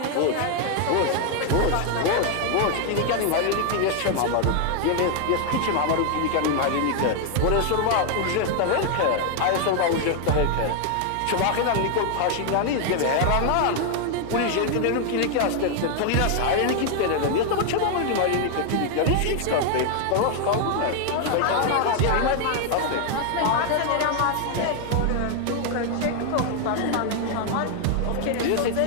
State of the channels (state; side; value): different; both; correlation 0.00